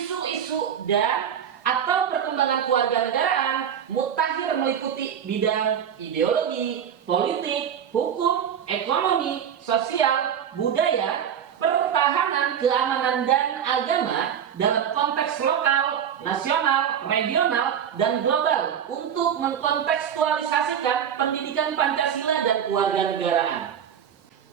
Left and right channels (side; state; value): left; quieter; 8.6 dB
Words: dan atau perkembangan kewarganegaraan mutakhir meliputi bidang ideologi, politik, hukum, ekonomi, sosial, budaya, pertahanan, keamanan, dan agama dalam konteks lokal, nasional, regional, dan global untuk mengkontekstualisasikan pendidikan Pancasila dan kewarganegaraan.